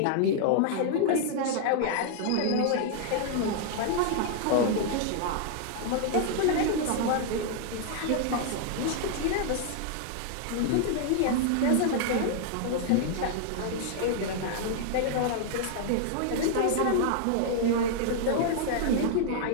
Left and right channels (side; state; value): both; different; correlation -0.01